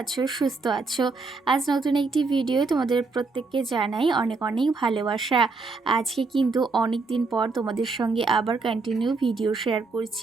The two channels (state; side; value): quieter; left; 4.0 dB